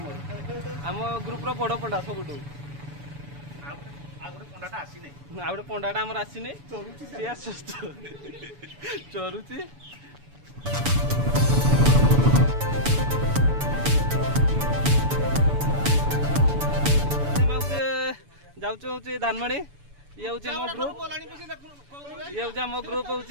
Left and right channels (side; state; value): left; late; 7.0 ms